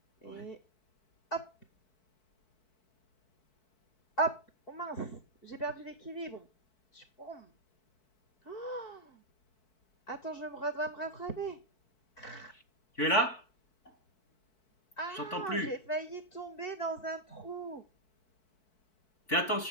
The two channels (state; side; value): late; right; 4.6 ms